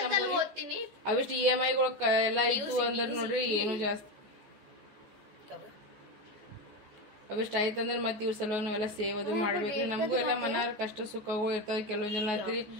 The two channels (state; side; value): late; left; 14 ms